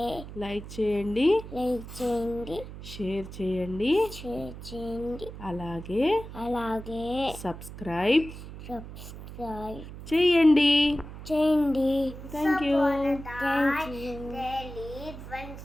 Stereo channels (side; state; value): right; noise; hum, 12 dB below the sound